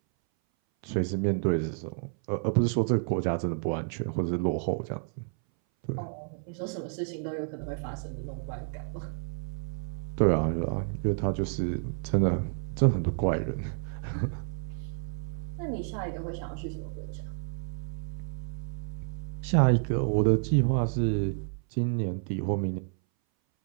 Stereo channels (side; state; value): left; silent; 58 dB below the other